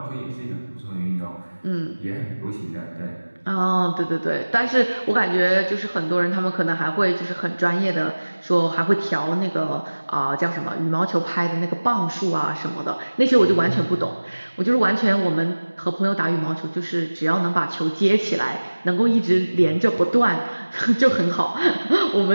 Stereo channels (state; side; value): inverted; both; correlation -1.00